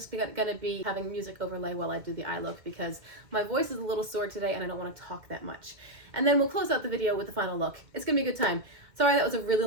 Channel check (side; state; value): left; late; 2.1 ms